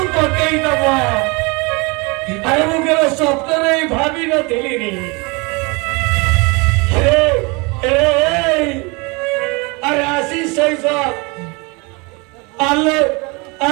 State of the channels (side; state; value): left; quieter; 28.3 dB